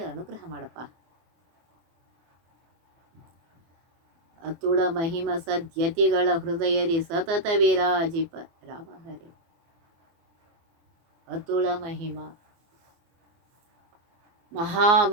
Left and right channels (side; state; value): left; late; 24 ms